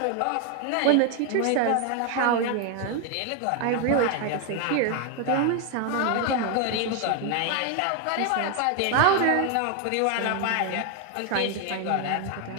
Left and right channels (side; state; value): both; different; correlation 0.01